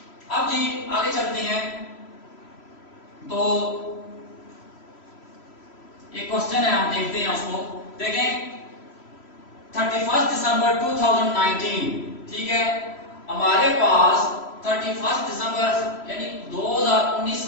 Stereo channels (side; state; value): right; late; 3.0 ms